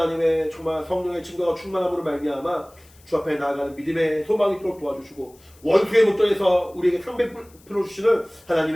정말 성령의 증거가 충만함으로 말미암아 주 앞에 나아가는 믿음의 소망이 있도록 도와주시고 원수의 목전에서 우리에게 상배 풀어주시는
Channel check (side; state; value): left; noise; hiss, 28 dB below the sound